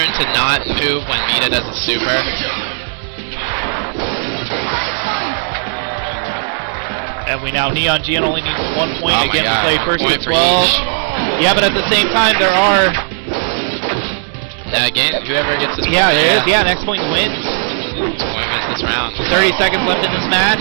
to not move when Mita does a super. And Neon Geon only needs 1 point. Again, we play first to 12. Yeah, but at the same time, there are... Now again, whoever gets this point. Yeah, there is. Yeah, next point wins. This point wins this round. 30 seconds left in this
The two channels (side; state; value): left; silent; digital silence